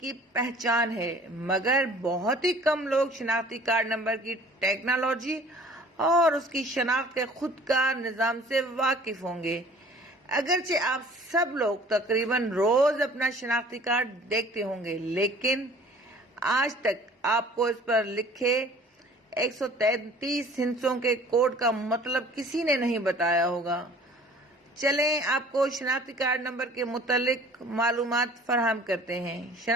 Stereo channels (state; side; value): normal; both; correlation 0.50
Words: پہچان ہے، مگر بہت ہی کم لوگ شناختی کارڈ نمبر کی ٹیکنالوجی اور اس کی شناخت کے خود کار نظام سے واقف ہوں گے۔ اگرچہ آپ سب لوگ تقریباً روز اپنا شناختی کارڈ دیکھتے ہوں گے، لیکن آج تک آپ کو اس پر لکھے 133 ہندسوں کے کوڈ کا مطلب کسی نے نہیں بتایا ہوگا۔ چلیں آپ کو شناختی کارڈ نمبر کے متعلق معلومات فراہم کرتے ہیں۔